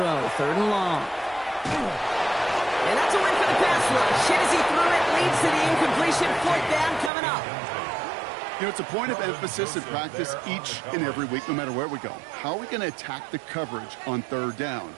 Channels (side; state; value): left; drops out; at 7.1 s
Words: third and long. And that's a win for the pass rush. Hit as he threw it, leads to the incompletion. Fourth down coming up. You know, it's a point of emphasis in practice each and every week, no matter where we go. How are we going to attack the coverage on third down?